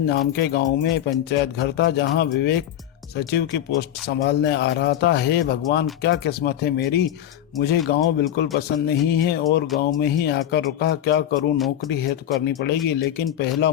नाम के गांव में पंचायत घर था, जहां विवेक सचिव की पोस्ट संभालने आ रहा था। हे भगवान, क्या किस्मत है मेरी। मुझे गांव बिल्कुल पसंद नहीं है और गांव में ही आकर रुका। क्या करूं, नौकरी है तो करनी पड़ेगी, लेकिन पहला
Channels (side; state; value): right; quieter; 11.3 dB